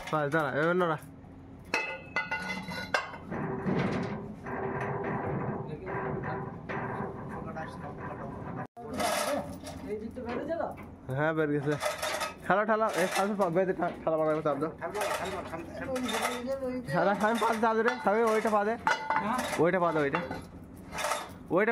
বাস দাঁড়া এবার না এই দিক তো বেড়ে যাবে হ্যাঁ বের গেছে খেলা ঠেলা এই সামনে বেঁধে ঠেলা মারা চাপ দাও খেলা সামনে পাতে চাপ রে সামনে ওইটা পাতে ওইটা পাতে ওইটা ওইটা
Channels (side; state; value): both; identical; correlation 1.00